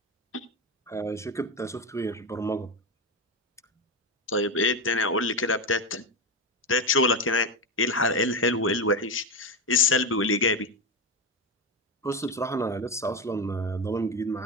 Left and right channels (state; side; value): normal; both; correlation 0.14